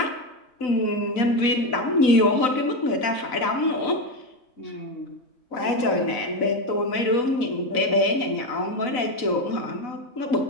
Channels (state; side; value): late; right; 4.0 ms